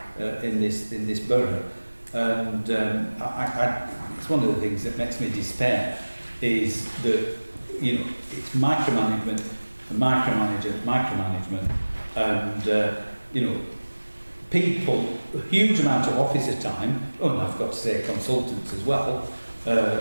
in this borough. And it's one of the things that makes me despair is that, you know, it's micromanagement, and you know, people, a huge amount of officer time, and I've got to say consultants as well, are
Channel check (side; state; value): both; inverted; correlation -1.00